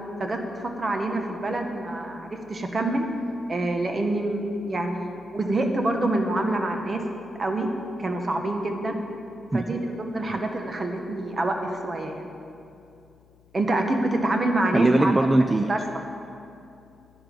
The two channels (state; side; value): noise; left; hum, 29 dB below the sound